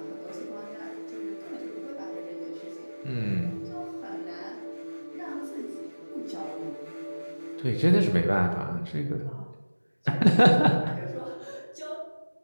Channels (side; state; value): both; inverted; correlation -1.00